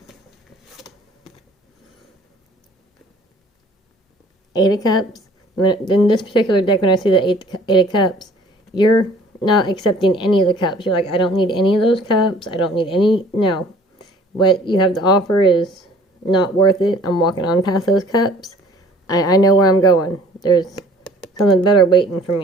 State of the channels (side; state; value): both; normal; correlation 0.52